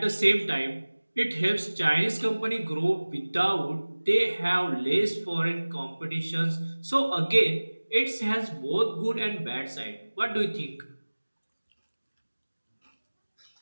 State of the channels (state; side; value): inverted; both; correlation -1.00